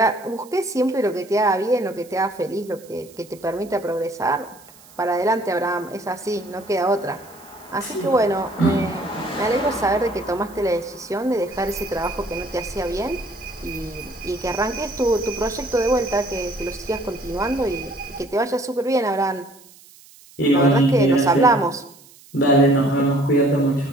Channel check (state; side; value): noise; right; hiss, 24 dB below the sound